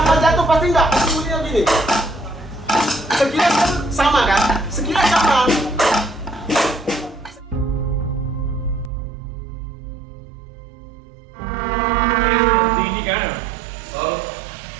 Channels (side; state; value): left; drops out; at 8.9 s